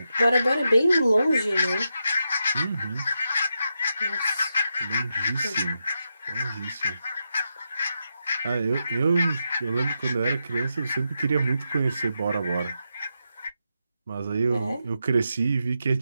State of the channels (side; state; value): both; inverted; correlation -0.86